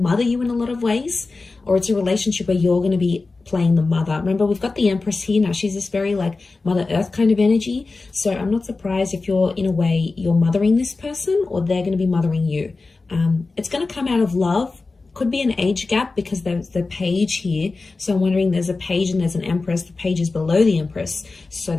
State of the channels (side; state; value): right; quieter; 3.7 dB